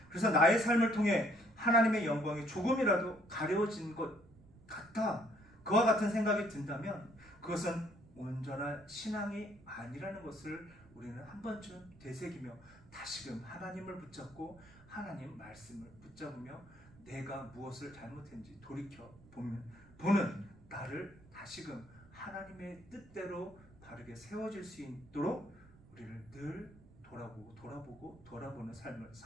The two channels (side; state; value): right; noise; rumble, 23 dB below the sound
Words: 그래서 나의 삶을 통해 하나님의 영광이 조금이라도 가려워진 것 같아 그와 같은 생각이 든다면 그것은 온전한 신앙이 아니라는 것을 우리는 한 번쯤 되새기며 다시금 하나님을 붙잡고 하나님 말씀을 붙잡으며 내가 무엇을 잘못했는지 돌이켜 보는 나를 다시금 하나님의 뜻대로 바르게 세워질 수 있도록 우리를 늘 돌아보는 삶을